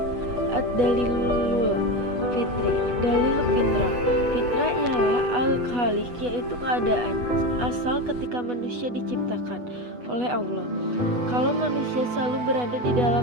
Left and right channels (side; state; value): left; late; 8.2 ms